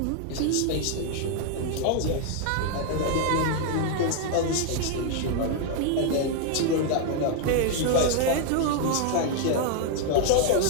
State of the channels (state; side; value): different; both; correlation 0.00